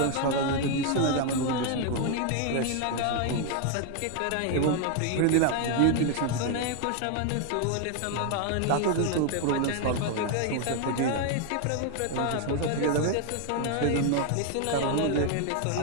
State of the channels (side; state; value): both; different; correlation 0.00